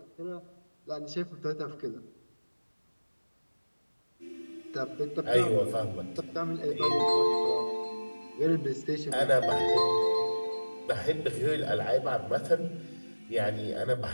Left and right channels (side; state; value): both; inverted; correlation -1.00